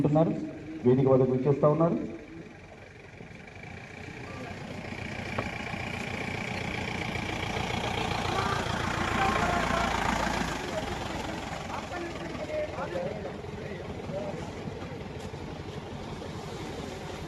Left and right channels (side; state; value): both; identical; correlation 1.00